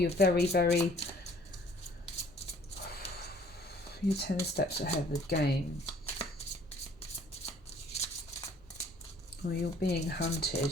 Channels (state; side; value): normal; both; correlation 0.56